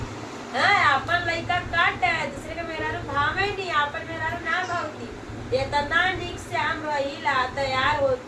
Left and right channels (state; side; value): identical; both; correlation 1.00